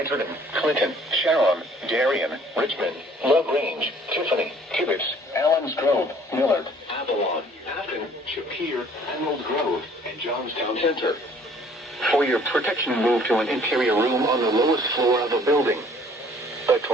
Clinton, Sharon, Darien, Richmond, LaGrange, Tiffany, Tibbetts, Allens Grove, Millard, Avalon, Afton, Shapir, Emerald Grove, and Johnstown Center. For your protection, move to an interior room on the lowest floor of a building. A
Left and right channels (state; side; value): normal; both; correlation 0.56